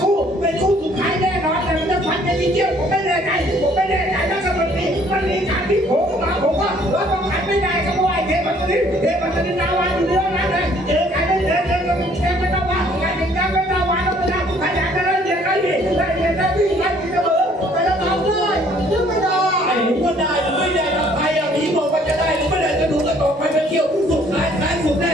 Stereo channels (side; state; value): both; normal; correlation 0.60